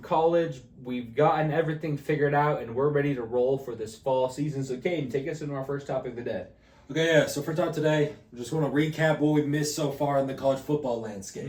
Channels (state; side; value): identical; both; correlation 1.00